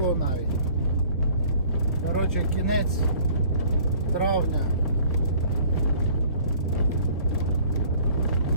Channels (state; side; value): inverted; both; correlation -0.52